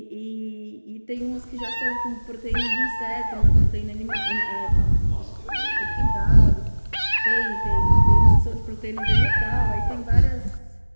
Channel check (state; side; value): inverted; both; correlation -1.00